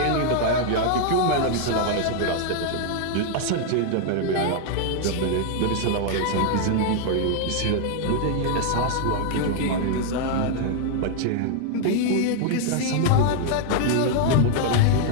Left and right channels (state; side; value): different; both; correlation 0.00